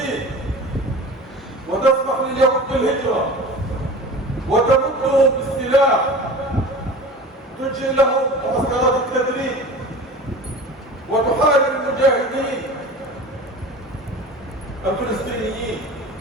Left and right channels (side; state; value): both; normal; correlation 0.36